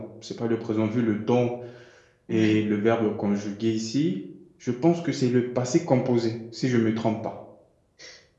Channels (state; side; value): identical; both; correlation 1.00